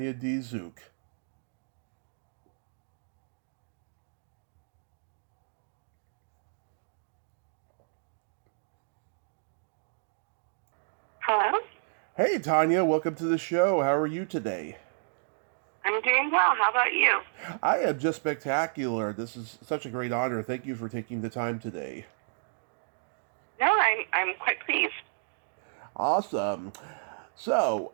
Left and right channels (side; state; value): left; silent; digital silence